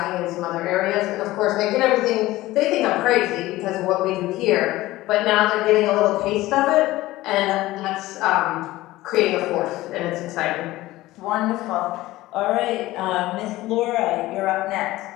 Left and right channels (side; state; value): right; quieter; 17.5 dB